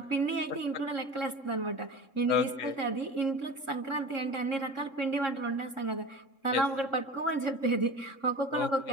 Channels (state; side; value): late; right; 3.7 ms